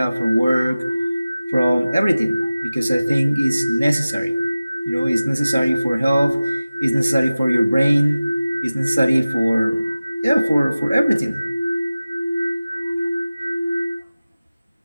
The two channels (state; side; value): inverted; both; correlation -0.97